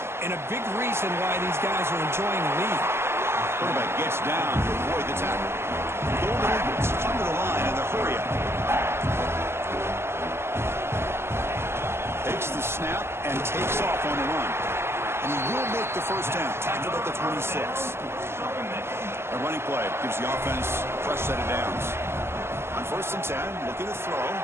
and a big reason why these guys are enjoying the lead. Quarterback gets down to avoid the tackle. Golden Eagles come to the line in the hurry up. Takes the snap and takes off on the run. And he will make the first down. Tackled at the 26. A running play gives the offense a fresh set of downs. On first and 10, looking to throw.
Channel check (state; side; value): late; left; 0.12 ms